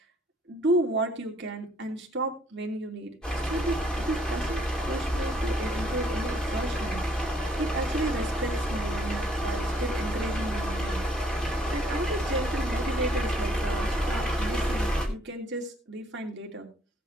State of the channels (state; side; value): normal; both; correlation 0.65